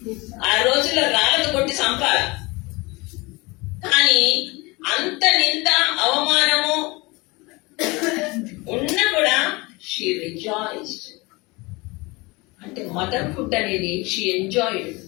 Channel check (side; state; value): right; quieter; 24.6 dB